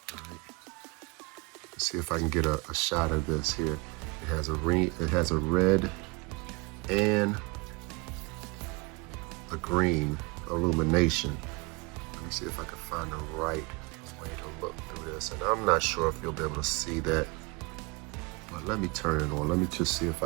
Right? Let's see if I can get a shot of this here. It has a red and a green illumination. Let me see if I can find the right way to look through this. And I'm not sure if you'll be able to see that. But let me turn it on. Let me just see if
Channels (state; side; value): quieter; left; 28.0 dB